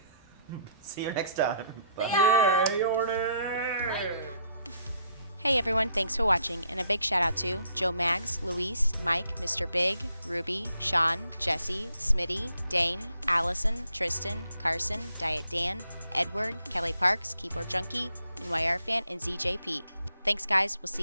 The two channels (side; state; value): both; inverted; correlation -0.69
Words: See you next time. Bye. Yay or nay? Hey everyone, thanks for watching, and a big shout out to Joe Maggs, Luis, Mike, Mr. Big, Ruby, Sean, Jesse, Smitty, Dane, Allison, Tristan, Carson, Diet Dan, Edward, Kelly Parks, Keyboard Junkie, NYR Fan, and ZJP. Thanks guys, we'll